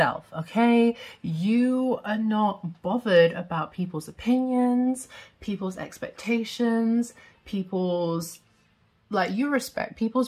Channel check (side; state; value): both; identical; correlation 1.00